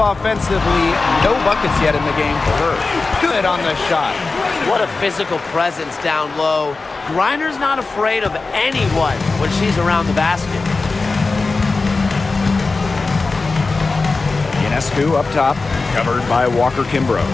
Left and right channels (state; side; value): quieter; right; 3.9 dB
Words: No buckets yet in the game for her. Good on the shot. What a physical presence down low. Griner's not afraid of anyone when she's around the basket. Ionescu up top, covered by Walker Kimbrough.